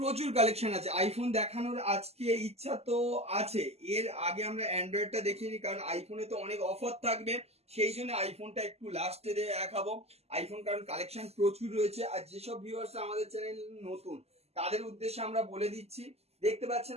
কালেকশন আছে আইফোন দেখানোর। আজকে ইচ্ছা তো আছে, এর আগে আমরা অ্যান্ড্রয়েডটা দেখিনি, কারণ আইফোনে তো অনেক অফার থাকবে, সেই জন্য আইফোনটা একটু লাস্টে দেখাবো। আইফোন কারণ কালেকশন প্রচুর রয়েছে। আর যেসব ভিউয়ার্স আমাদের চ্যানেল নতুন তাদের উদ্দেশ্যে আমরা বলে দিচ্ছি, দেখতে পাচ্ছেন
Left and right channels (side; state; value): left; late; 0.30 ms